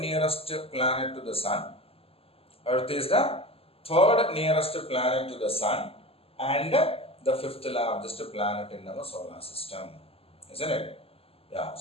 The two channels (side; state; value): right; late; 0.28 ms